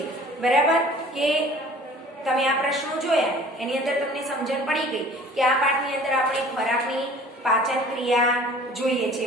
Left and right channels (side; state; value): both; normal; correlation 0.48